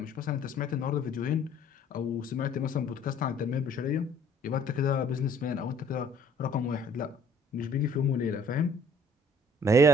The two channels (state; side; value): normal; both; correlation 0.57